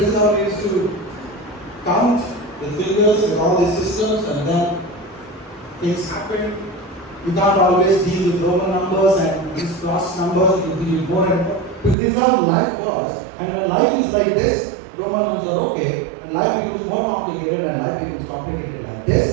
is how we used to count the figures with all these systems, and then things happen. You can't always deal with Roman numbers and these cross numbers. You deal more and more. Because this is how life was. And when life is like this, Roman numbers are okay. And life becomes more complicated, and life becomes complicated like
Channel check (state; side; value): drops out; left; at 12.0 s